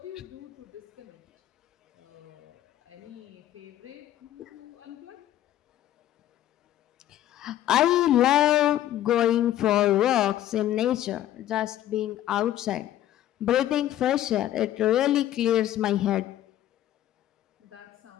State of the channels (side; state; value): right; quieter; 12.6 dB